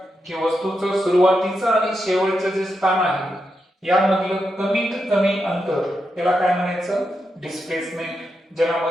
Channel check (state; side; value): normal; both; correlation 0.86